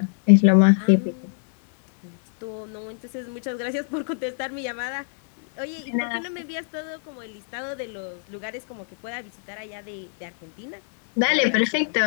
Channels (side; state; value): right; silent; digital silence